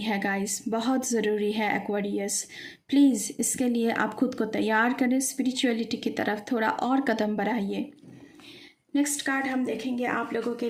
गाइस, बहुत ज़रूरी है एक्वेरियस। प्लीज़ इसके लिए आप खुद को तैयार करें, स्पिरिचुअलिटी की तरफ थोड़ा और कदम बढ़ाइए। नेक्स्ट कार्ड हम देखेंगे आप लोगों के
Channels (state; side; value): identical; both; correlation 1.00